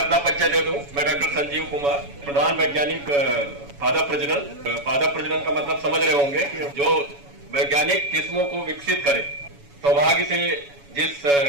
परिचय दे दूं। मैं डॉक्टर संजीव कुमार, प्रधान वैज्ञानिक पादप प्रजनन। पादप प्रजनन का मतलब समझ रहे होंगे कि जो वैज्ञानिक किस्मों को विकसित करे। सौभाग्य से जिस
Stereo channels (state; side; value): late; left; 7.1 ms